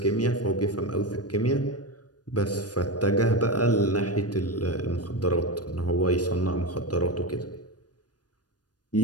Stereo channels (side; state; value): right; late; 0.69 ms